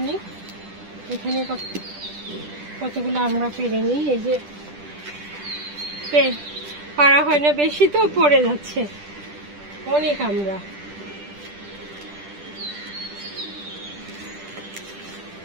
নিই। এখানে কতগুলো আমরা পেরে নিই। এই যে পারা হয় না বেশি, তো পড়ে যাচ্ছে অনেক আমরা।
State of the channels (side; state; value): left; late; 10 ms